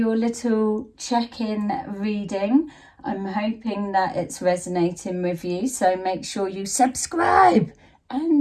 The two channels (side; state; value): both; identical; correlation 1.00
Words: little check-in reading. I'm hoping that it's resonating with you. So make sure you subscribe